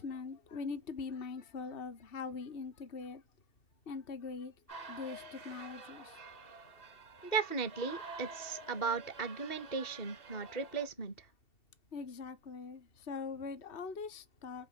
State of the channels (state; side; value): late; right; 2.7 ms